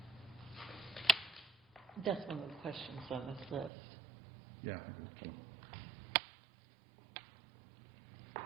That's one of the questions on this list. yeah, I think it's one.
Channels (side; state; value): left; drops out; at 3.7 s